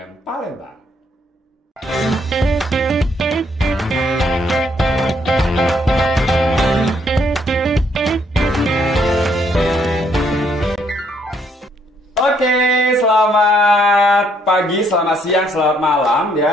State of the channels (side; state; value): both; normal; correlation 0.70